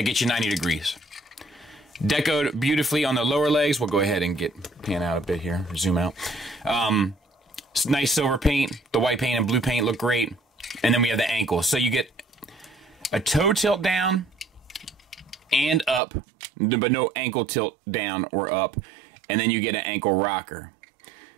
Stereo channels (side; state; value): left; drops out; at 16.0 s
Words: gets you 90 degrees. Decoed beautifully on the lower legs. We'll go ahead and pan out a bit here, zoom out. Nice silver paint. The white paint and blue paint look great. And then we have the ankle. So you get a toe tilt down and up, but no ankle tilt down or up. And then you get an ankle rocker.